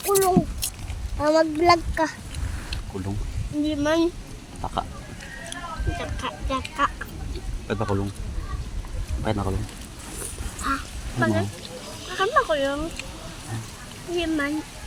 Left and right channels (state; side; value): identical; both; correlation 1.00